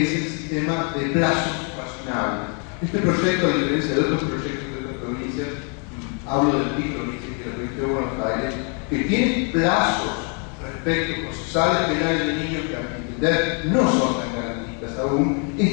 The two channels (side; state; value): right; quieter; 38.5 dB